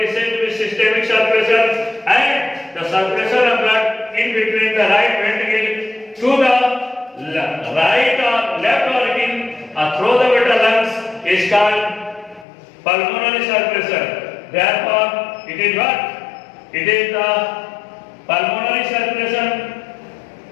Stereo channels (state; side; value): drops out; right; at 12.5 s